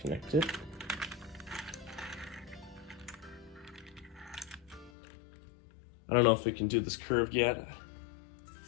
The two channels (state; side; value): drops out; right; at 4.9 s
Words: it. I don't know if we can do this curved yet.